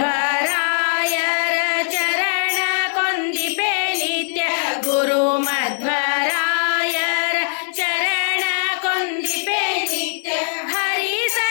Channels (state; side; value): silent; right; 64 dB below the other